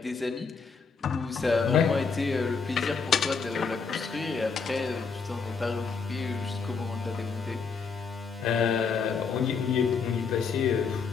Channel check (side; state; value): right; quieter; 5.4 dB